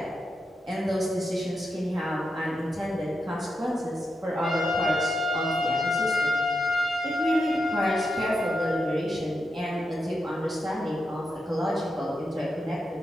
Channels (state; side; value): normal; both; correlation 0.86